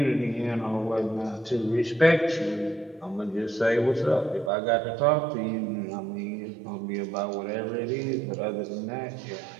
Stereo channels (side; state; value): left; drops out; at 4.5 s